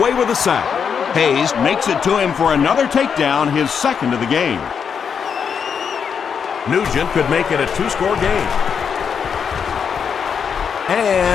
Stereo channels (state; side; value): quieter; right; 6.8 dB